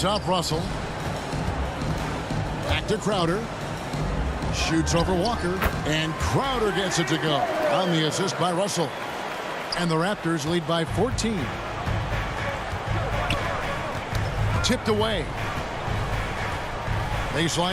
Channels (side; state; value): both; identical; correlation 1.00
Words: Russell. Back to Crowder. Shoots over Walker. And Crowder gets it to go on the assist by Russell. And the Raptors lead by 14. Tipped away.